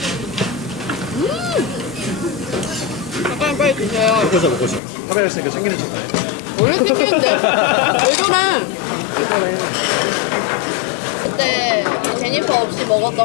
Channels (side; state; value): right; drops out; at 4.8 s